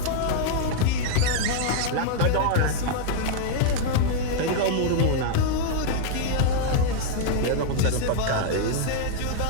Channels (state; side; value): different; both; correlation -0.01